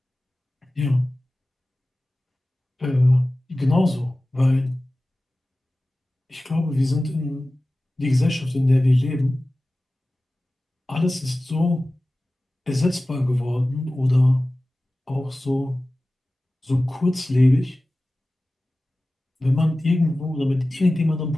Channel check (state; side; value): normal; both; correlation 0.96